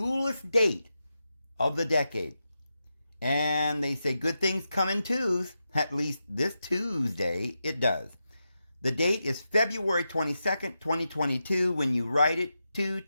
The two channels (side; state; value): both; inverted; correlation -0.88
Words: date of the decade. And they say good things come in twos. At least this Tuesday it does. The date is February 22nd, 2022. When you write it,